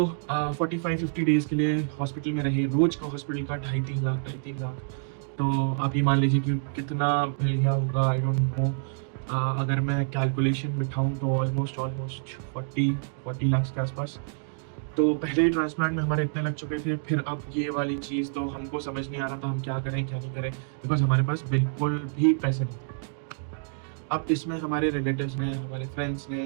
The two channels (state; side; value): silent; left; digital silence